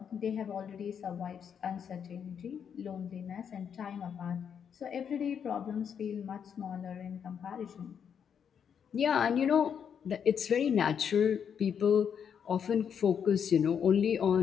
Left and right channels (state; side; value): quieter; right; 7.7 dB